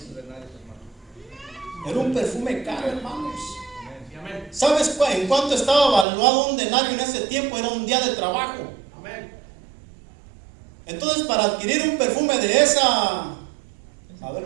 Era un perfume caro, hermanos. ¿Sabes en cuánto estaba valuado un denario en ese tiempo? Era un día de trabajo. Entonces, para adquirir un perfume de esa, a ver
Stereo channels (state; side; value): drops out; left; at 6.1 s